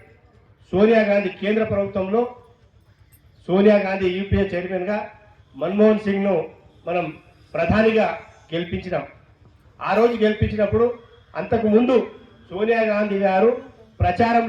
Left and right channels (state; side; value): identical; both; correlation 1.00